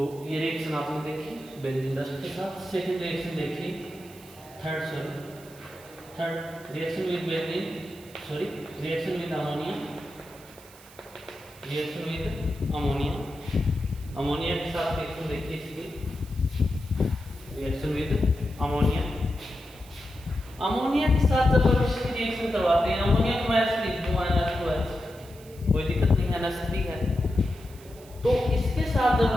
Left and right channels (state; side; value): noise; right; hiss, 22 dB below the sound